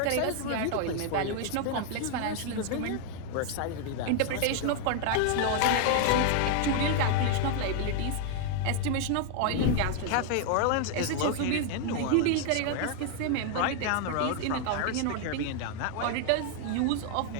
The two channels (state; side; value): different; both; correlation 0.00